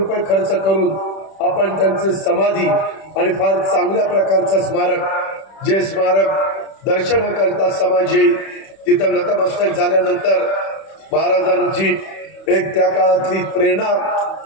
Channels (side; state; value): right; late; 31 ms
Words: खर्च करून आपण त्यांचं समाधी आणि फार चांगल्या प्रकारचं स्मारक, जे स्मारक दर्शन करता समाज येईल तिथं नतमस्तक झाल्यानंतर महाराजांची एक त्या काळातली प्रेरणा